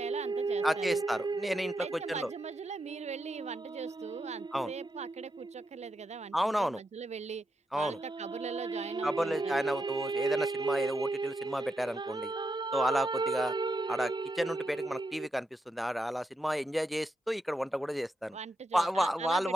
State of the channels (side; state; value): both; normal; correlation 0.84